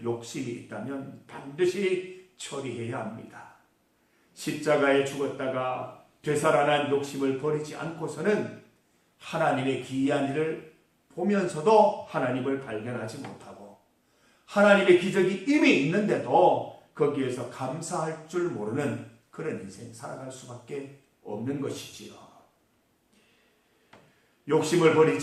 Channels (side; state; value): both; identical; correlation 1.00